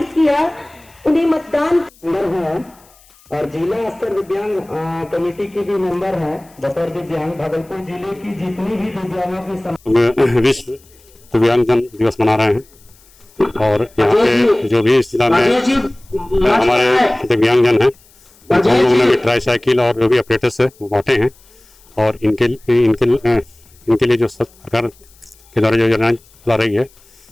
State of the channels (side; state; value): left; noise; hiss, 29 dB below the sound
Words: किया, उन्हें मतदान है और जिला स्तर दिव्यांग कमेटी की भी मेंबर है। बतौर दिव्यांग भागलपुर जिले की जितनी भी दिव्यांगों की विश्व दिव्यांगजन दिवस मना रहे हैं और यहाँ पे जो भी इस जिला में हमारे दिव्यांगजन हैं उन लोगों ने भी ट्राई साइकिल और जो भी ऑपरेटर्स है वो बांटे हैं और इनके लिए जो सरकार के द्वारा जो योजना चला रही